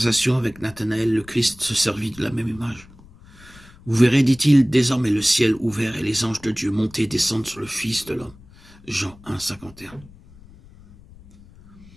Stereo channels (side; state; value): left; noise; rumble, 23 dB below the sound